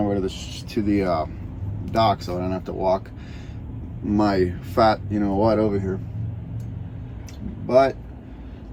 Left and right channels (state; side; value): identical; both; correlation 1.00